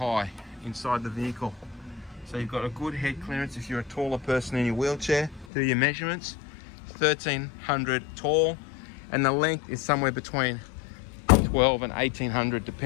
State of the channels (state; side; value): drops out; right; at 5.5 s